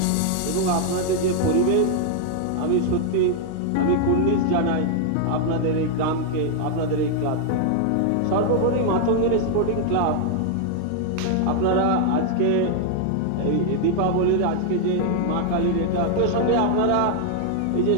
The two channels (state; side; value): different; both; correlation 0.00